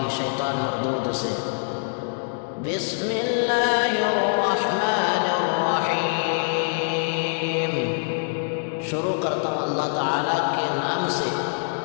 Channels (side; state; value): right; silent; digital silence